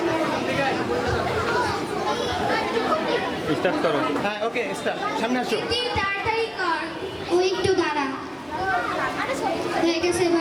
স্টার্ট করো। হ্যাঁ ওকে স্টার্ট, সামনে আসো। তাড়াতাড়ি কর, ও একটু দাঁড়া। হয়ে গেছে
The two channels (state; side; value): identical; both; correlation 1.00